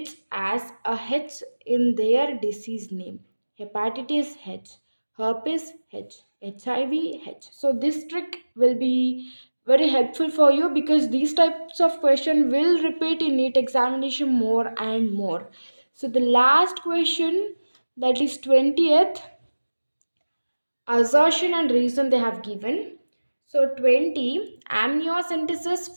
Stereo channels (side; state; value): both; inverted; correlation -1.00